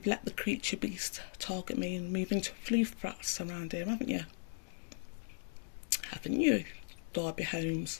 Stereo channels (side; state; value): right; silent; digital silence